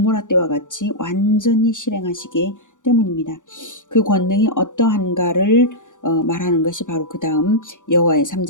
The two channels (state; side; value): late; right; 0.86 ms